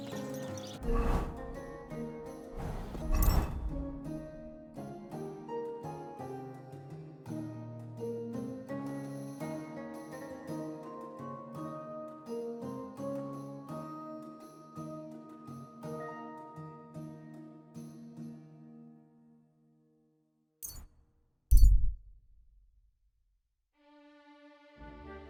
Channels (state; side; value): identical; both; correlation 1.00